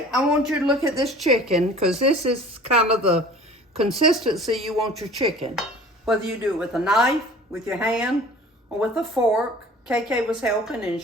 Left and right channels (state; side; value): normal; both; correlation 0.45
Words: I want you to look at this chicken because this is kind of the consistency you want your chicken. Whether you do it with a knife, with your hand, or with a fork. KK was helping and